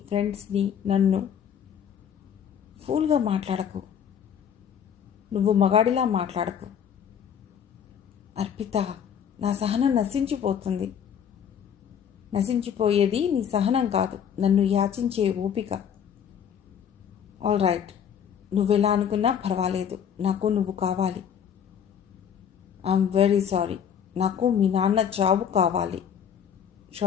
ఫ్రెండ్స్ని, నన్ను. ఫూల్గా మాట్లాడకు. నువ్వు మగాడిలా మాట్లాడకు. అర్పిత, నా సహనం నశించిపోతుంది. నశించిపోయేది నీ సహనం కాదు, నన్ను యాచించే ఓపిక. ఆల్ రైట్, నువ్వెలా అనుకున్నా పర్వాలేదు, నాకు నువ్వు కావాలి. ఐఎమ్ వెరీ సారీ, నాకు మీ నాన్న చావు కావాలి.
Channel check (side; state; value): right; quieter; 8.3 dB